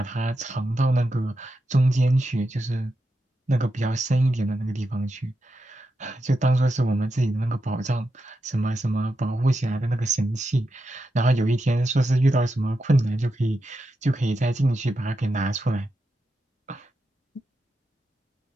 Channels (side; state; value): both; normal; correlation 0.87